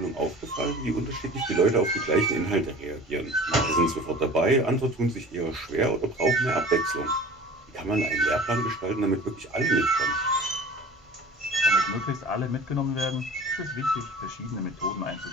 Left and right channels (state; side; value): normal; both; correlation 0.41